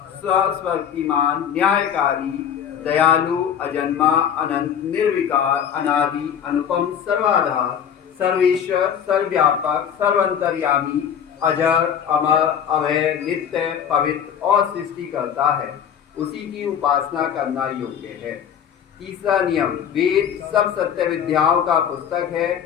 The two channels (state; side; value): quieter; right; 8.6 dB